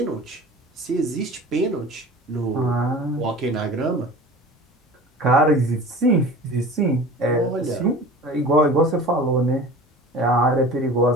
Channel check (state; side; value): normal; both; correlation 0.39